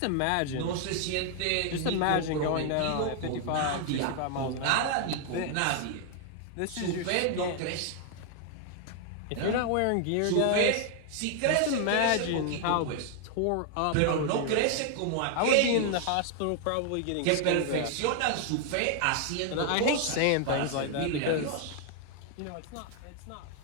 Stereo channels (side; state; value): both; different; correlation 0.00